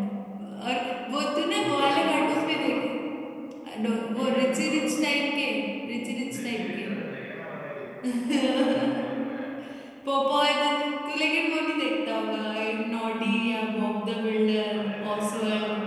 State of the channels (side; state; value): both; identical; correlation 1.00